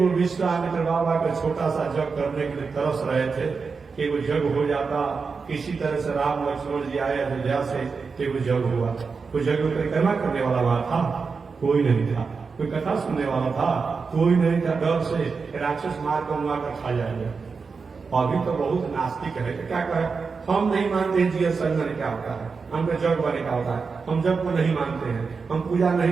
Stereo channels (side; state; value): left; quieter; 5.0 dB